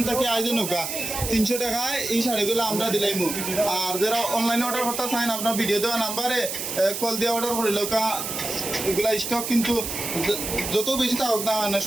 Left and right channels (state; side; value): noise; right; hiss, 5 dB below the sound